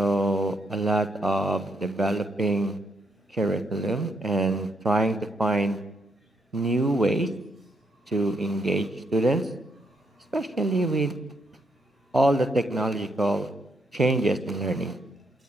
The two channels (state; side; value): normal; both; correlation 0.76